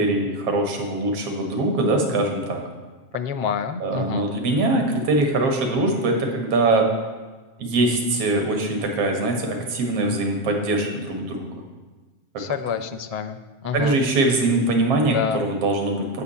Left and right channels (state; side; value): late; left; 7.5 ms